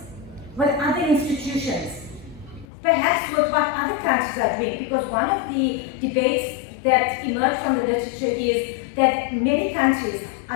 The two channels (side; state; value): right; drops out; at 2.7 s